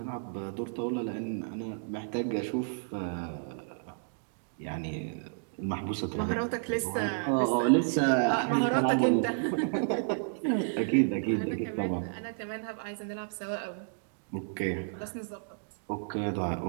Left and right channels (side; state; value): left; silent; digital silence